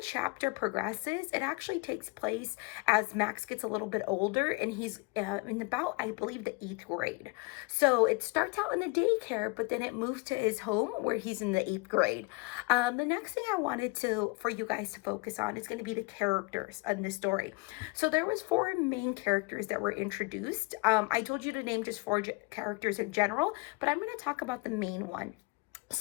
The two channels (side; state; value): right; quieter; 27.1 dB